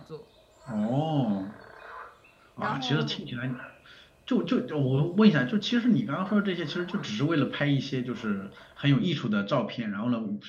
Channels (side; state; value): both; identical; correlation 1.00